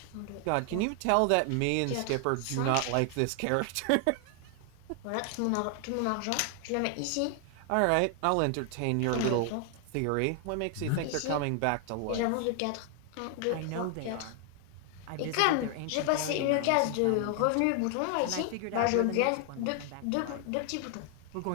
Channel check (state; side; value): different; both; correlation 0.00